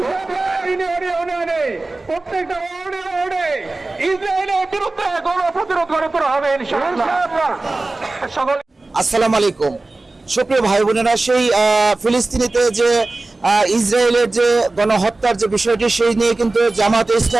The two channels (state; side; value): quieter; left; 3.2 dB